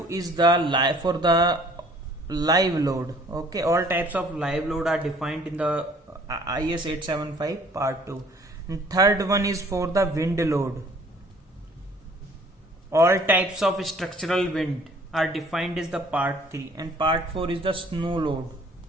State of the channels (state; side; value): normal; both; correlation 0.55